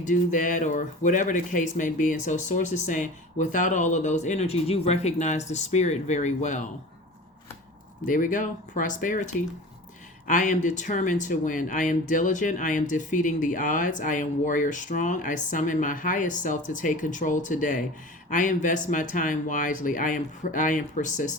that, or whatever the case may be. And so Source is saying, without all of those energies, you recognize the spirit very well. There we go. Prosperity. I am determined to win. I am diligent. I am defeating the odds. I am warrior strong. I summon my highest self to take control today. I invest my time wisely. I am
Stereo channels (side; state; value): both; normal; correlation 0.37